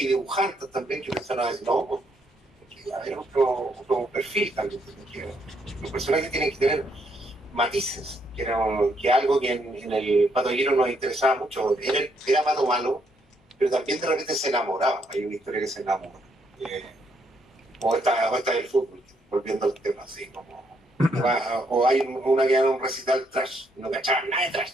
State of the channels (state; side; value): normal; both; correlation 0.74